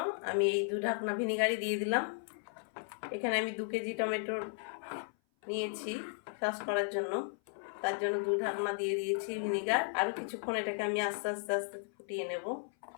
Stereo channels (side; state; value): right; silent; 54 dB below the other